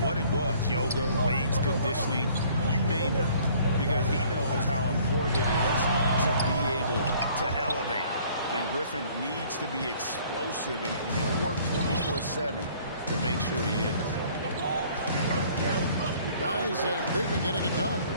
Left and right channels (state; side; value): inverted; both; correlation -0.56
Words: what it was, yoga, weights, conditioning, you name it, because he knows how important it is to be able to elevate. And Griffin needs to be explosive, and he'll work 24/7 to make sure he is. Guys, they've been getting it done.